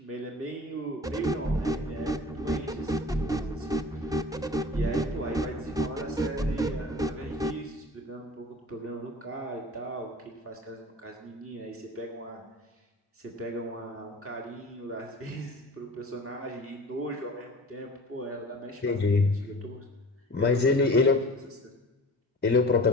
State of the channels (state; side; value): normal; both; correlation 0.41